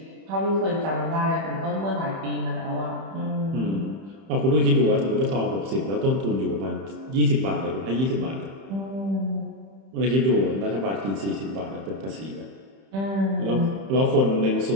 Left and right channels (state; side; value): late; left; 31 ms